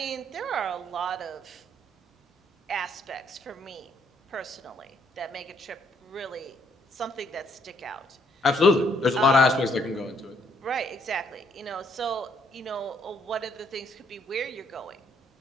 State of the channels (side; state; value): both; normal; correlation 0.69